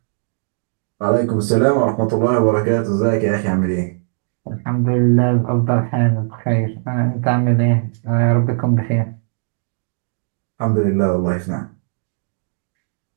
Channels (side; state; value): left; silent; 67 dB below the other